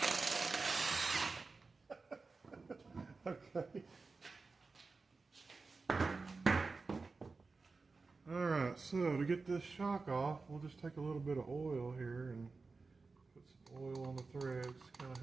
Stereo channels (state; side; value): quieter; left; 4.1 dB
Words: Okay. Alright, so to get this shock off, we'll just take a little bit of oil here and put some oil on the threads, kind of